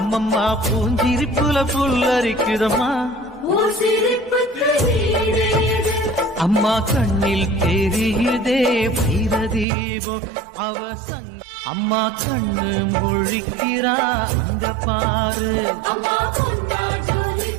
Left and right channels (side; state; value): left; drops out; at 9.7 s